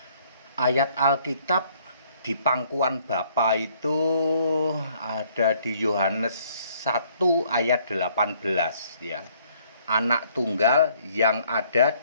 Ayat Alkitab di pangkuan Bapa itu ada di Yohanes 1 ayat 18 ya. Anak tunggal yang ada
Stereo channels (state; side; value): inverted; both; correlation -0.63